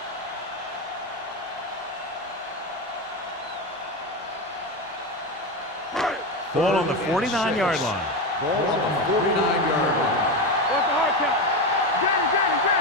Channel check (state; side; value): normal; both; correlation 0.15